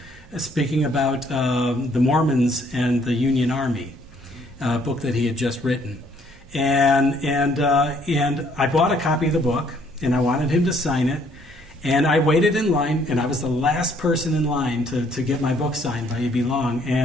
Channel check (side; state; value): both; normal; correlation 0.64